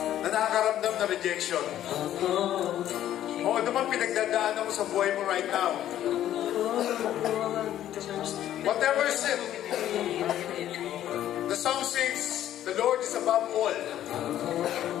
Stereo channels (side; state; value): right; quieter; 12.0 dB